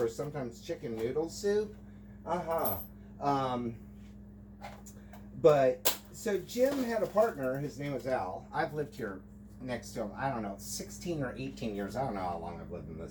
sometimes chicken noodle soup. But, so Jim had a partner. His name was Al. I've lived here next to him, I don't know, 16 or 18 years. I don't know how long I've lived in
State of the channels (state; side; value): identical; both; correlation 1.00